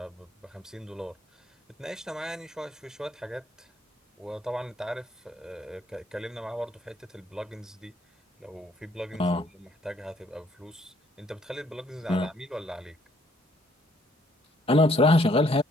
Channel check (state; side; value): normal; both; correlation 0.66